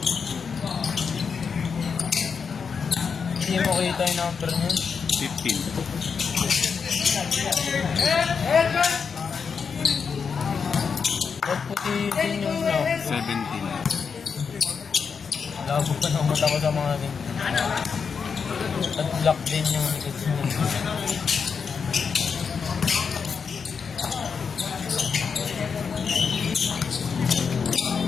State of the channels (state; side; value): quieter; right; 5.9 dB